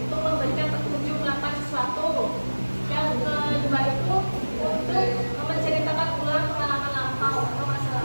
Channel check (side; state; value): both; inverted; correlation -1.00